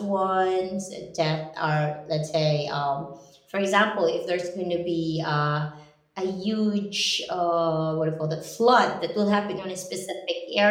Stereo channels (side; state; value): both; identical; correlation 1.00